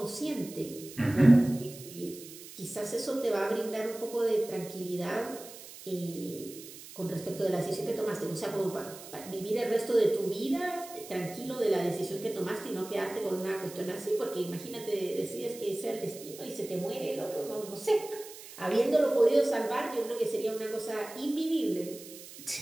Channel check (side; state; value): right; noise; hiss, 15 dB below the sound